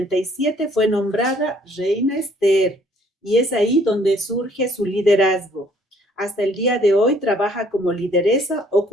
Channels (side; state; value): both; normal; correlation 0.62